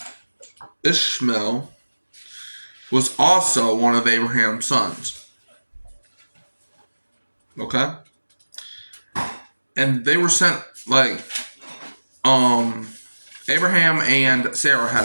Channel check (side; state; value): both; inverted; correlation -1.00